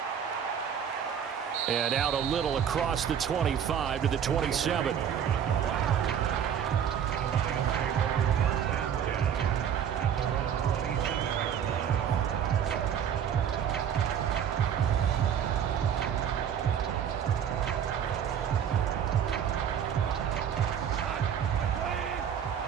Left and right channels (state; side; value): quieter; left; 8.6 dB